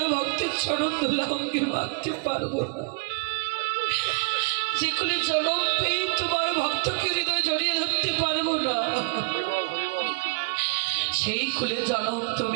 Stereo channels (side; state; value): left; quieter; 33.2 dB